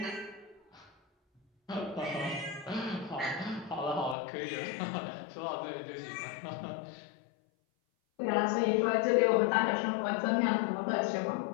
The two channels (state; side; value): drops out; right; at 4.2 s